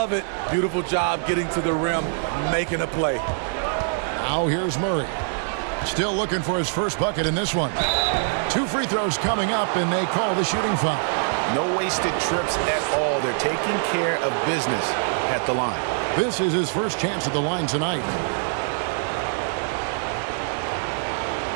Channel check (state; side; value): silent; left; digital silence